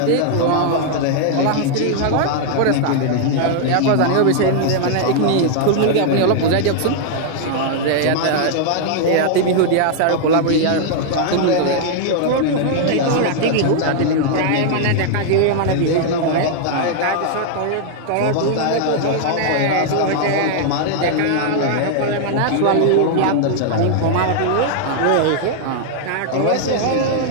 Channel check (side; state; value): both; different; correlation -0.01